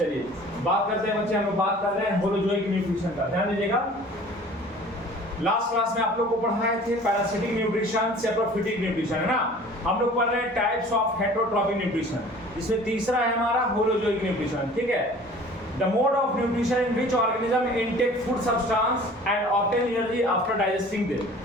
बात करते हैं बच्चे, हम लोग बात कर रहे हैं होलोजोइक न्यूट्रिशन का। ध्यान दीजिएगा, लास्ट क्लास में आप लोग को पढ़ाए थे पैरासिटिक न्यूट्रिशन, सेप्रोफिटिक न्यूट्रिशन, है ना। हम लोग पढ़ रहे हैं टाइप्स ऑफ हेटेरोट्रॉपिक न्यूट्रिशन, इसमें तीसरा है हमारा होलोजोइक न्यूट्रिशन, ठीक है। The mode of nutrition in which organism intake food substance and obtain energy after digesting them,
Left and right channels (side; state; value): both; normal; correlation 0.47